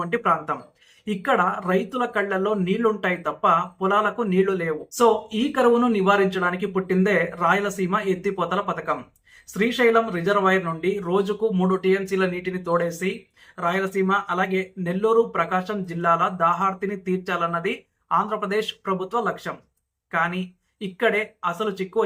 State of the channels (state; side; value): identical; both; correlation 1.00